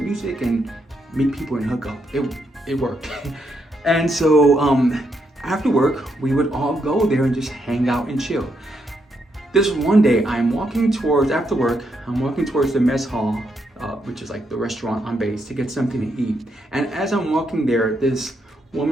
music and meet people and hook up. It worked. And so after work, we would all go there and just hang out and chill. This one day, after work, I'm walking towards the mess hall, which is like the restaurant on base, to get something to eat. And as I'm walking there, this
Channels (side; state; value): both; normal; correlation 0.79